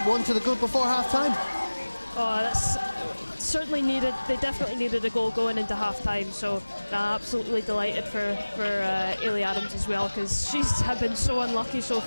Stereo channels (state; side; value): inverted; both; correlation -1.00